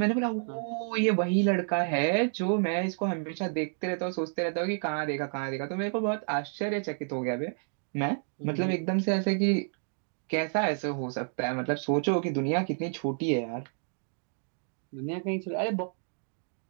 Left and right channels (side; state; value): left; silent; digital silence